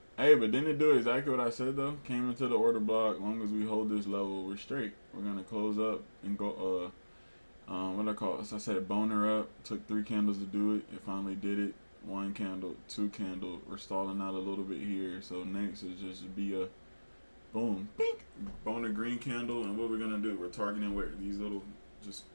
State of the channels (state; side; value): inverted; both; correlation -1.00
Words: Hey, but didn't it do exactly what I said though? Came into the order block. As long as we hold this level, we're straight. We're gonna close up and go. What I call it? So I said boner up. Took 3 candles to do it. It finally did it. 1 candle, 2 candle. We're stalling out a little bit here. So next is just be a boom, pink, boner green candle. And what we're gonna do? We're targeting where these little just